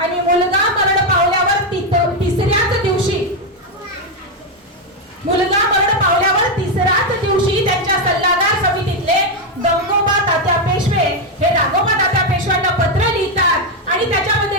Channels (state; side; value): normal; both; correlation 0.05